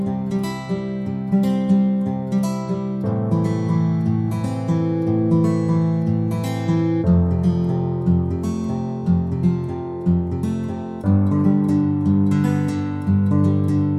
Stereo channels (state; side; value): identical; both; correlation 1.00